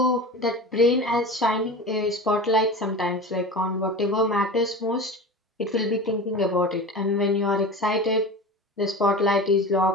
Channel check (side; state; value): both; normal; correlation 0.31